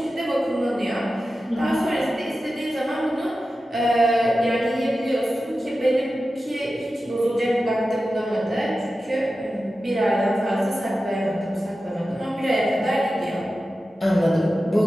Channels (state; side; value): normal; both; correlation 0.93